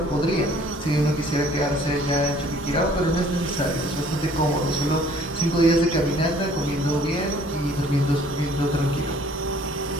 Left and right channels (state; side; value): normal; both; correlation 0.56